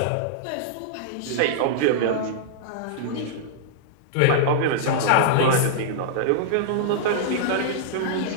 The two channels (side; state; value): both; different; correlation -0.02